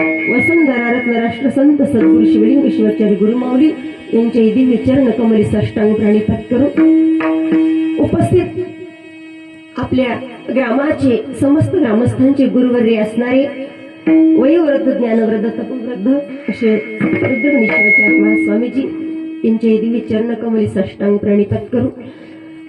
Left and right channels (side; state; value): both; identical; correlation 1.00